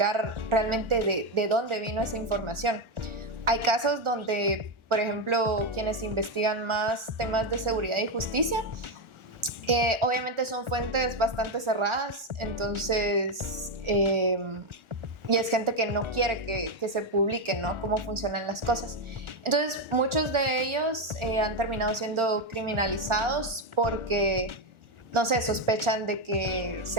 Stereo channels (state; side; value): late; left; 1.4 ms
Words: realmente de dónde vino esa información. Hay casos donde, por ejemplo, quienes investigan más temas de seguridad y justicia, obviamente son fuentes bastante cerradas, entonces, y es gente que no quiere que se publique, ¿no? Cómo funcionan las cosas. Entonces, muchos de ellos han terminado siendo criminalizados porque, no sé, sospechan de que